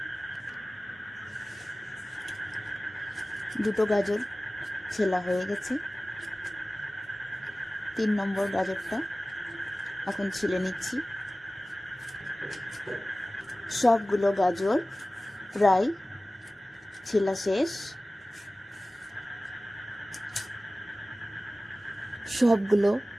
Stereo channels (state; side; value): normal; both; correlation 0.96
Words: দুটো গাজর ছেলা হয়ে গেছে। 3 নম্বর গাজরটা এখন ছিলে নিচ্ছি। সবগুলো গাজর প্রায় ছেলা শেষ। সবগুলো